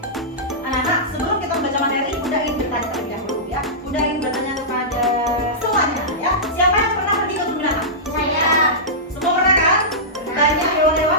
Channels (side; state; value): both; normal; correlation -0.15